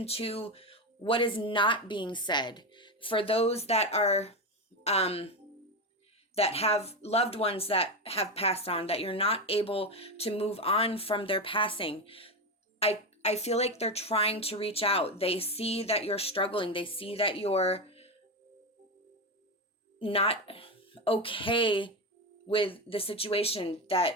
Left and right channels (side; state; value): both; normal; correlation 0.14